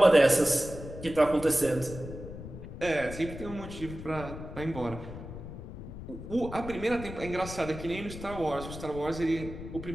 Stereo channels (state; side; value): noise; left; rumble, 11 dB below the sound